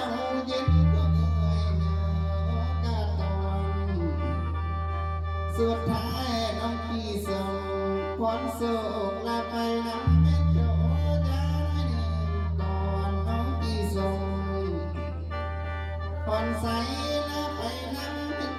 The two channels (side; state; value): both; identical; correlation 1.00